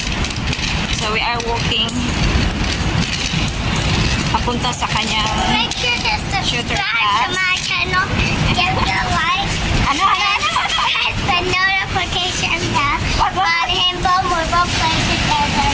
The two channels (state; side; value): identical; both; correlation 1.00